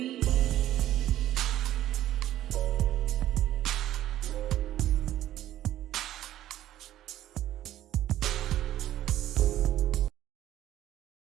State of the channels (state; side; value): quieter; left; 13.0 dB